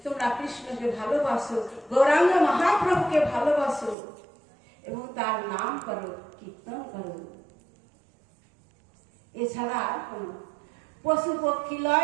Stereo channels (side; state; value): left; drops out; at 4.0 s